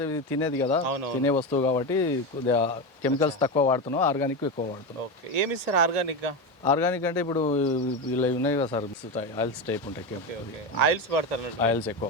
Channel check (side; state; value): both; normal; correlation 0.16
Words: ఇది తినేది కదా, అవును. తినే వస్తువు కాబట్టి కొద్దిగా కెమికల్స్ తక్కువ వాడుతున్నాం, ఆర్గానిక్ ఎక్కువ వాడుతున్నాం. ఓకే, ఏమి ఇస్తారు ఆర్గానిక్గా? ఆర్గానిక్ అంటే ఇప్పుడు ఇలా ఉన్నాయి కదా సార్, ఆయిల్స్ టైప్ ఉంటాయి, ఓకే, ఆయిల్స్ వాడతారు అన్నట్టు. ఆయిల్స్ ఎక్కువ